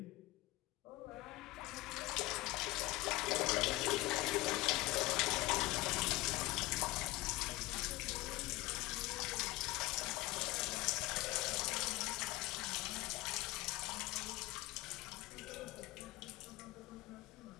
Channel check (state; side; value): quieter; right; 19.8 dB